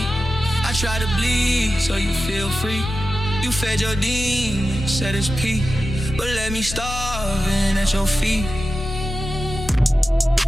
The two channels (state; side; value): normal; both; correlation 0.92